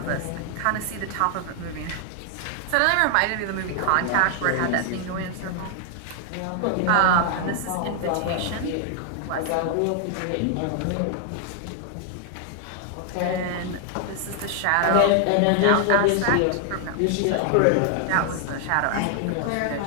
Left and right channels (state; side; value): different; both; correlation 0.00